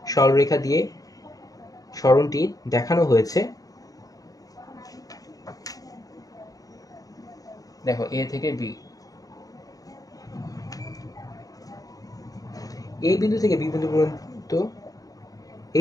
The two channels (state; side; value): late; right; 0.18 ms